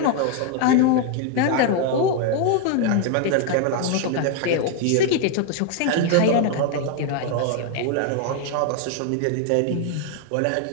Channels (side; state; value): both; different; correlation 0.00